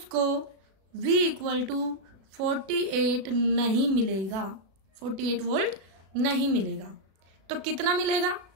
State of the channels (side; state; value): left; late; 36 ms